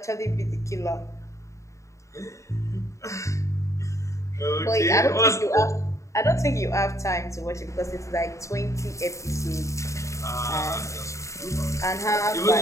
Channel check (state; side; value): late; right; 0.15 ms